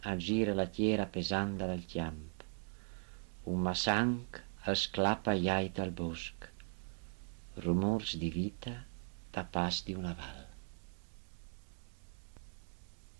la tiera pesanda dal chiamp. Un massanc esclappa iait al bosc. Rumors di vita tapas di una val.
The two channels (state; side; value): silent; left; 52 dB below the other